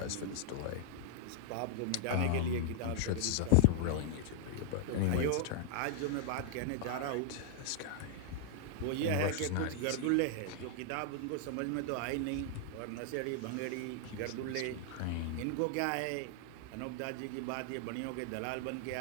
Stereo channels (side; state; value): both; different; correlation -0.01